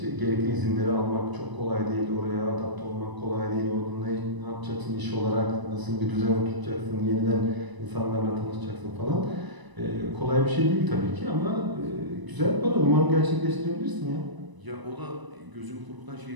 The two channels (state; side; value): late; left; 1.0 ms